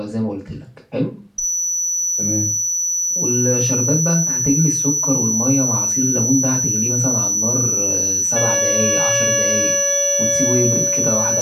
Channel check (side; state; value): both; identical; correlation 1.00